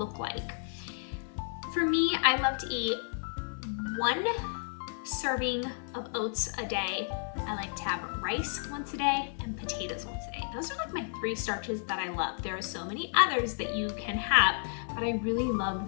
like. For me, I love to eat 1 serving of oats a day. I like to have rice once a day and potatoes once a day. Those are like my 3 starches that I love. There are so many others that you can have, but I really love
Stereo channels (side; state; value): right; silent; 55 dB below the other